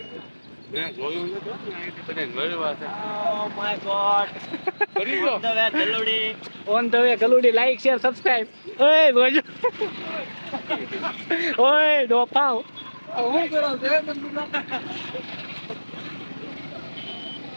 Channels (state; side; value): inverted; both; correlation -1.00